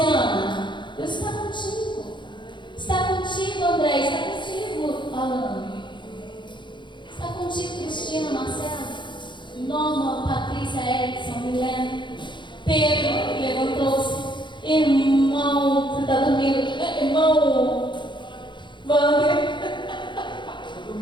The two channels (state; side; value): late; right; 0.23 ms